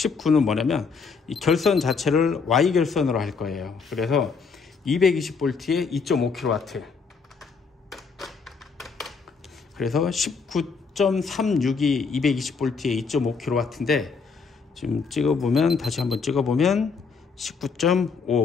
뭐냐면 이 결선 자체를 Y 결선으로 할 거예요. 그래서 220V에 2.5kW. 그래서 19.36이 220V에 2.5kW인데 지금 찍어보면, 다시 한번 찍어보면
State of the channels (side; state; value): right; quieter; 5.1 dB